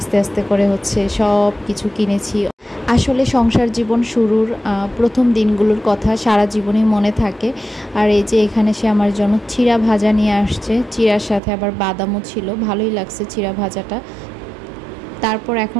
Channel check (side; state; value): left; drops out; at 11.4 s